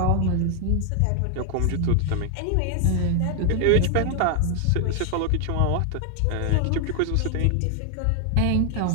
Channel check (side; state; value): both; different; correlation 0.00